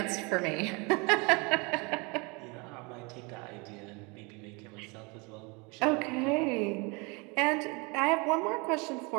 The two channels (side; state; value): left; quieter; 28.9 dB